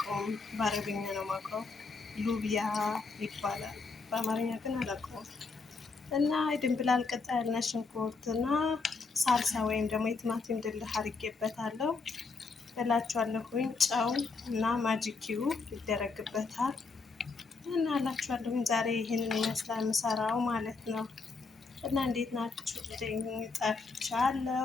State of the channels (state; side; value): quieter; right; 4.3 dB